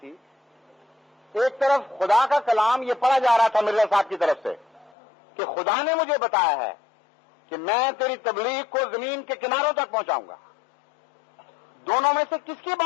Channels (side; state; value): right; drops out; at 4.9 s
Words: ایک طرف خدا کا کلام یہ پڑھا جا رہا تھا مرزا صاحب کی طرف سے کہ خدا نے مجھے بتایا ہے کہ میں تیری تبلیغ کو زمین کے کناروں تک پہنچاؤں گا. دونوں میں سے کس کی